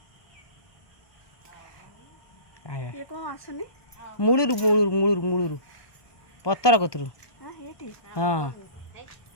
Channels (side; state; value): right; late; 1.2 ms